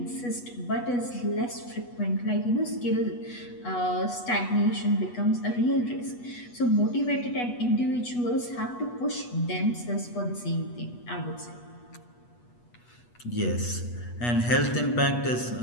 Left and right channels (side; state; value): right; late; 8.2 ms